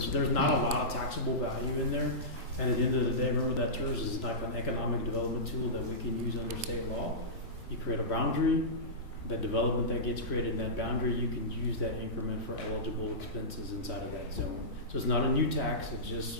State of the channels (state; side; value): normal; both; correlation -0.17